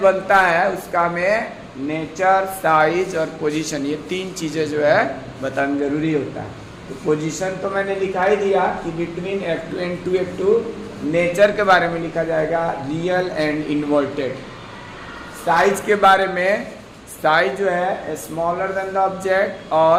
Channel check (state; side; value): identical; both; correlation 1.00